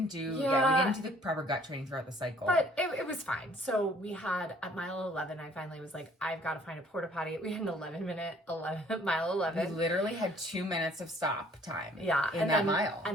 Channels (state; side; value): normal; both; correlation 0.58